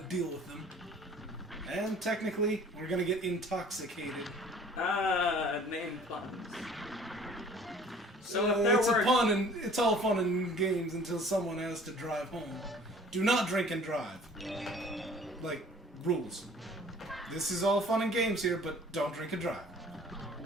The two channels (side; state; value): both; normal; correlation 0.50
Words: with them. And technically, we're gonna get intoxicated. Name puns. So if there it's were... a pun, and it's all fun and games until someone has to drive home. Do not drink and drive. Like, rules. This is all fun and games here, but don't drink and drive.